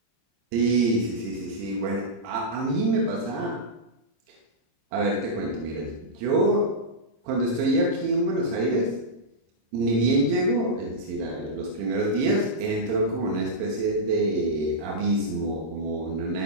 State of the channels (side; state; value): left; late; 26 ms